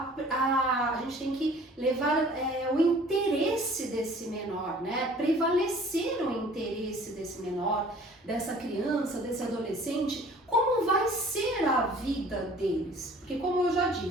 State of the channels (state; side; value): normal; both; correlation 0.50